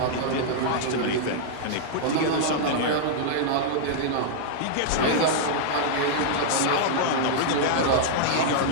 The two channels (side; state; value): both; different; correlation -0.01